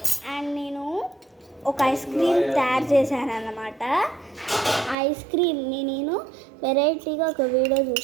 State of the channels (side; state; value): left; drops out; at 5.0 s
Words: ఒక ఐస్ క్రీమ్ తయారు చేశాను అన్నమాట. ఐస్ క్రీమ్ని నేను వెరైటీగా ఒక వీడియో